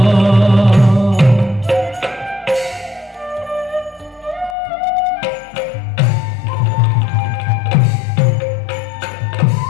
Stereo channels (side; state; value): right; drops out; at 4.5 s